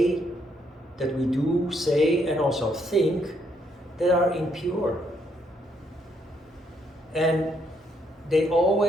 that we do say, and also think that are impure. And they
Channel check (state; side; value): normal; both; correlation 0.73